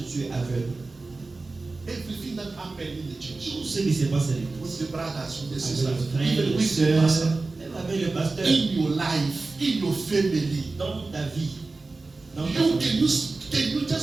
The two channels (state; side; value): quieter; left; 3.6 dB